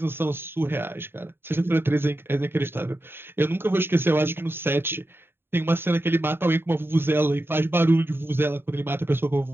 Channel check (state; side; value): late; left; 0.11 ms